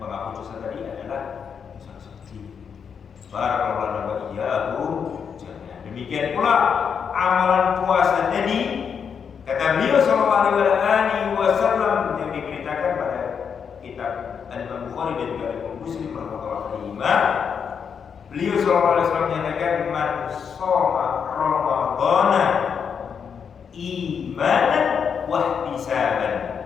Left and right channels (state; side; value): quieter; right; 6.9 dB